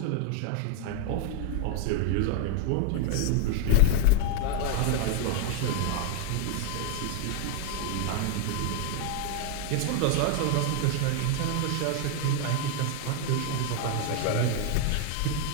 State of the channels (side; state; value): both; different; correlation 0.00